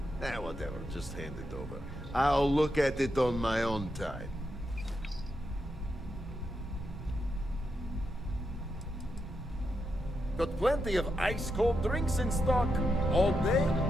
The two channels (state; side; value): normal; both; correlation 0.84